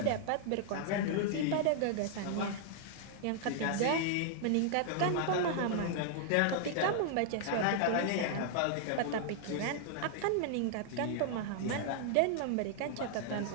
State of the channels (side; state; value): both; different; correlation -0.01